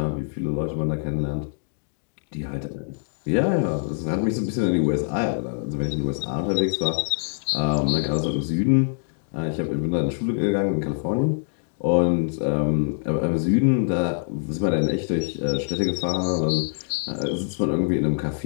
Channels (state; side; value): silent; right; digital silence